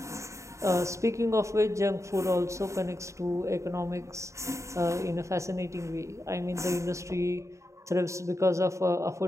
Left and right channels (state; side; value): late; left; 0.14 ms